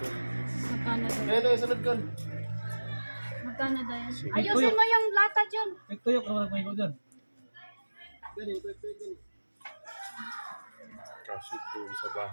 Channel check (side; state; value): both; inverted; correlation -1.00